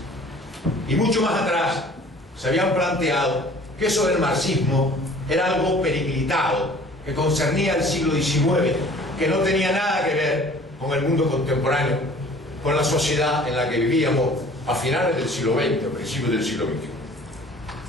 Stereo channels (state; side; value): normal; both; correlation 0.50